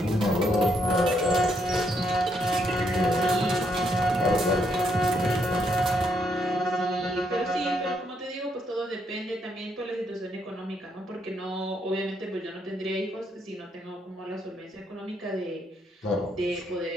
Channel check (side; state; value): both; normal; correlation 0.75